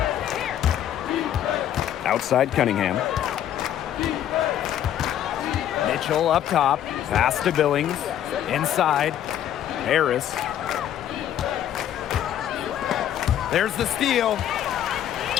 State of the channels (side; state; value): right; quieter; 10.8 dB